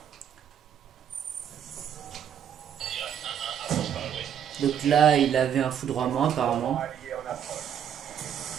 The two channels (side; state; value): left; quieter; 8.9 dB